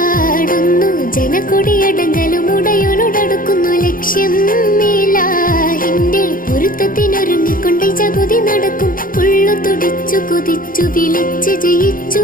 ജനക്കൊടിയടങ്കലും ഉടയോനോടടുക്കുന്നു ലക്ഷ്യം ഇലാഹിന്റെ പൊരുത്തത്തിനൊരുങ്ങിക്കൊണ്ട് ജഗതി നടക്കും. ഉള്ളു തുടിച്ചു കൊതിച്ചു വിളിച്ച് ജയിച്ചു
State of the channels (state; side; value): late; right; 0.40 ms